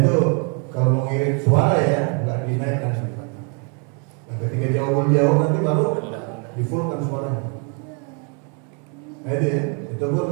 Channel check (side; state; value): left; quieter; 37.6 dB